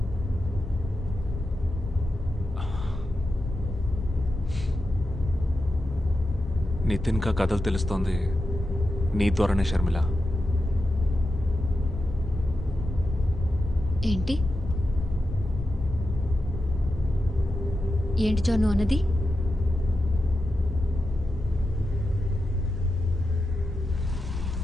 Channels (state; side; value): normal; both; correlation 0.89